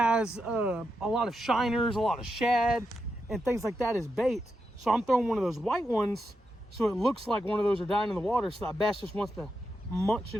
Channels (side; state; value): both; normal; correlation 0.86